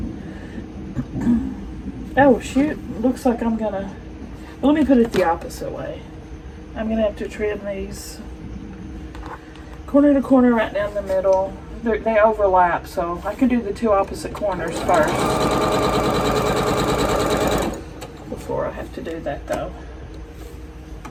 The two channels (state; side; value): identical; both; correlation 1.00